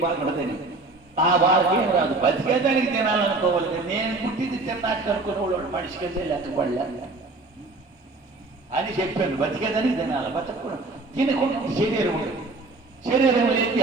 బాగుంటుందని ఆ వాళ్ళకి ఏం రాదు. బతికేదానికి తినాలనుకోవాలి. నేను పుట్టింది తిన్నాక అనుకునేవాడు మనిషికి వెళ్ళే లెక్కపడలే అని చెప్పాను. బతికేదానికి తినాలి, బతకూడదు. తినకుండా శరీరం ఉండదు. శరీరం లేని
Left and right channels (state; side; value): quieter; left; 3.3 dB